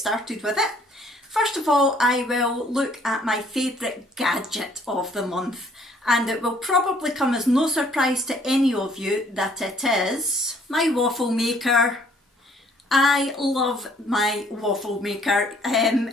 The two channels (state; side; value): normal; both; correlation 0.61